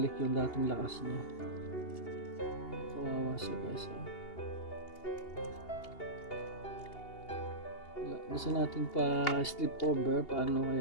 yung dating lakas niya. Kawawa siya, guys. Gusto natin pa sleep over, paano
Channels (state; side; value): late; right; 2.8 ms